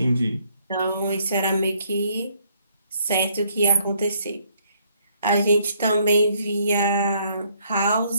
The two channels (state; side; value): inverted; both; correlation -0.68